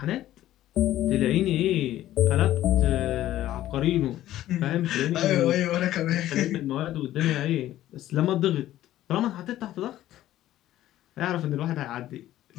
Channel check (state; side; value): quieter; right; 13.8 dB